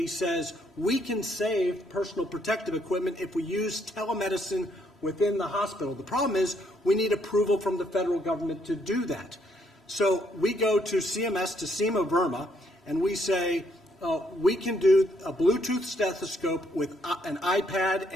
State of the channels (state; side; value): normal; both; correlation 0.71